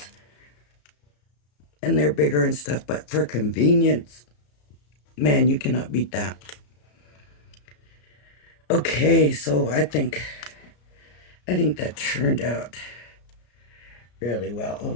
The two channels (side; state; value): right; late; 33 ms